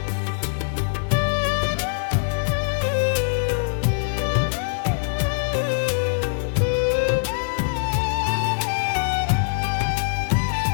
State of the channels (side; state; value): right; silent; digital silence